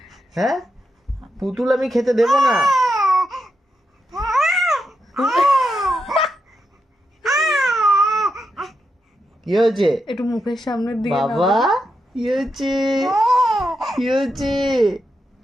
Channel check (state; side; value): normal; both; correlation 0.85